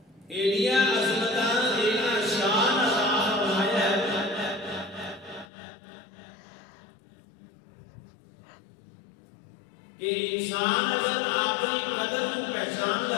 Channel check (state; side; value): drops out; right; at 5.5 s